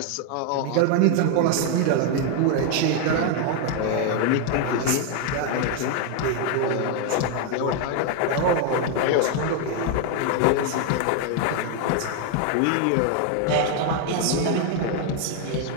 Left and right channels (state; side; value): different; both; correlation 0.01